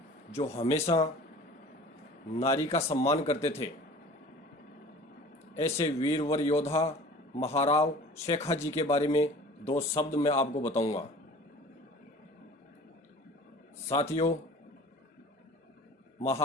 जो हमेशा नारी का सम्मान करते थे। ऐसे वीरवर योद्धा महाराव शेखाजी के बारे में दो शब्द मैं आपको बताऊंगा। साथियों,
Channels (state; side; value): normal; both; correlation 0.43